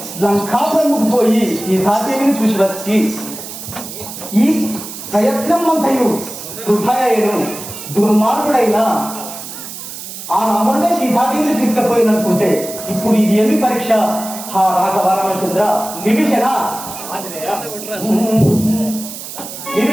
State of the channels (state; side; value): noise; right; hiss, 11 dB below the sound